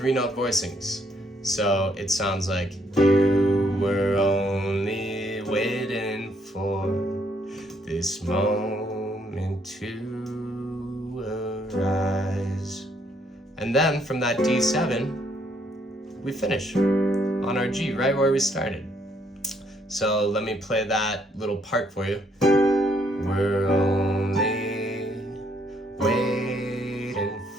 voicings. So it sounds like you were only waiting for this moment to arise. And then from that D7, we finish on our G, right where we started. So let me play that little part for you. We're only waiting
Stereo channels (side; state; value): both; normal; correlation 0.70